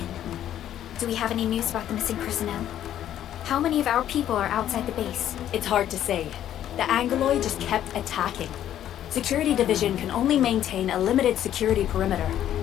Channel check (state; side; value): quieter; right; 11.3 dB